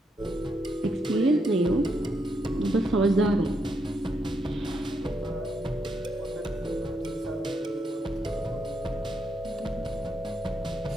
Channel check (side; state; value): both; normal; correlation 0.79